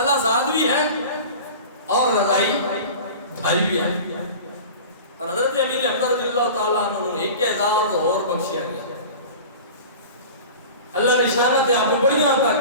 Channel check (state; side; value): inverted; both; correlation -0.36